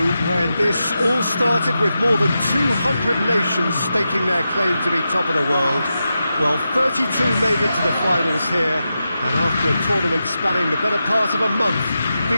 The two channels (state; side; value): inverted; both; correlation -0.89